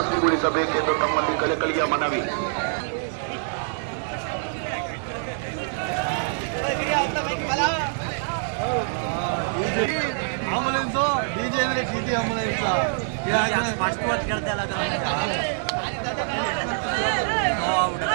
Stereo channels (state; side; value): silent; left; digital silence